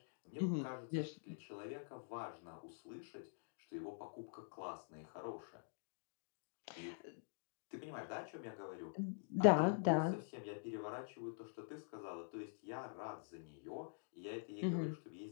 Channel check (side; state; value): right; silent; digital silence